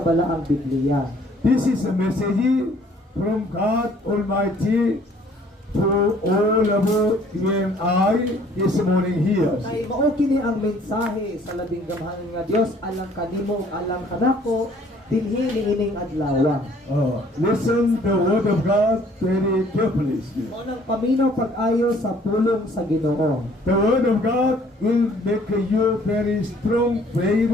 balaang Biblia. This is a message from God Almighty to all of you and I this morning here. Kay mao kini ang mensahe sa labing gamhanan nga Dios alang kanimo ug alang kanako dinhi niining adlaw. Listen the word of God very carefully. Mao nang paminaw pag-ayo sa pulong sa Ginoo. The word of God will make you very strong,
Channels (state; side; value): normal; both; correlation 0.58